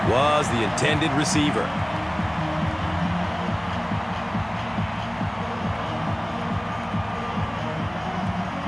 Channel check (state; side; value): noise; left; hum, 24 dB below the sound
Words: was the intended receiver.